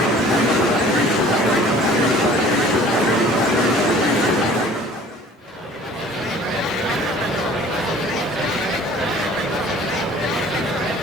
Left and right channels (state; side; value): normal; both; correlation 0.49